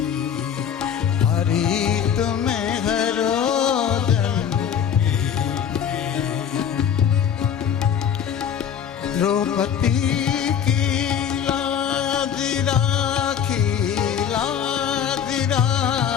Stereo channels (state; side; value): quieter; right; 8.4 dB